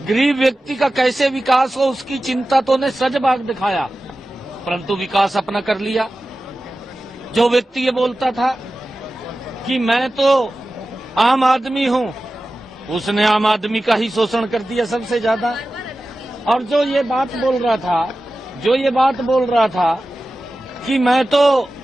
गरीब व्यक्ति का कैसे विकास हो उसकी चिंता तो ने सजबाग दिखाया, परंतु विकास अपना कर लिया। जो व्यक्ति ये बोलता था कि मैं तो आम आदमी हूं, उसने आम आदमी का ही शोषण कर दिया सबसे ज्यादा। और जो ये बात बोल रहा था कि मैं तो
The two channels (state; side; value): normal; both; correlation 0.95